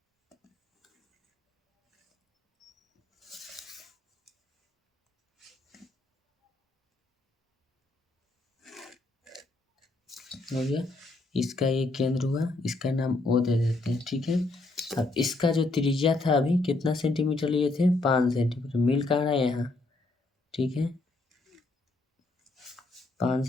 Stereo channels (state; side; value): quieter; right; 3.0 dB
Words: हो गया, इसका ये केंद्र हुआ, इसका नाम O दे देते हैं, ठीक है। अब इसका जो त्रिज्या था अभी कितना सेंटीमीटर लिए थे, 5 सेंटीमीटर, मिल कहाँ रहा है यहाँ, ठीक है। 5